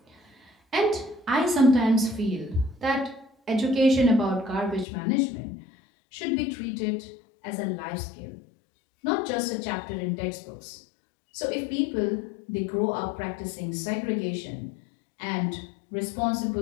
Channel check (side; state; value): right; drops out; at 4.9 s